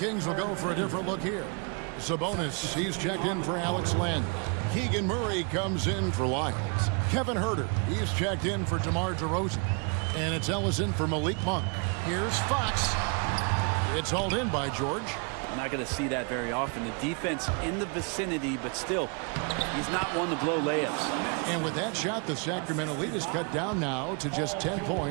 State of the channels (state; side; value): quieter; left; 35.7 dB